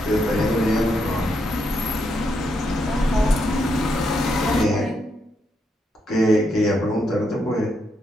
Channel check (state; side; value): normal; both; correlation 0.80